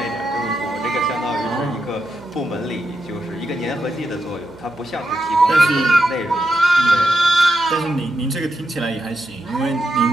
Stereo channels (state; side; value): noise; right; hum, 25 dB below the sound